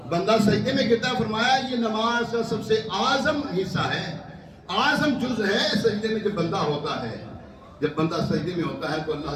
بندہ سجدے میں گرتا, فرمایا یہ نماز کا سب سے اعظم حصہ ہے, اعظم جز ہے سجدے میں جب بندہ ہوتا ہے. جب بندہ سجدے میں ہوتا ہے تو اللہ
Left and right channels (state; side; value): identical; both; correlation 1.00